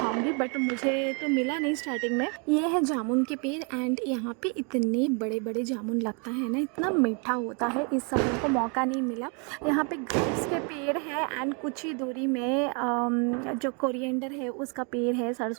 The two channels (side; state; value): left; quieter; 36.0 dB